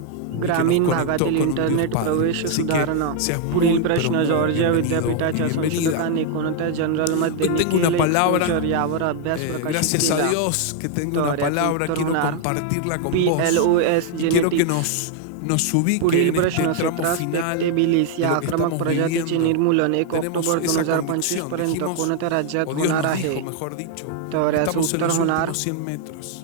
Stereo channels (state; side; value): different; both; correlation 0.00